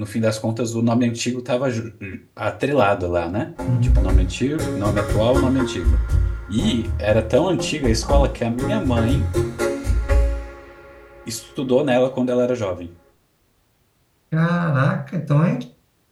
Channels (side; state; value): both; identical; correlation 1.00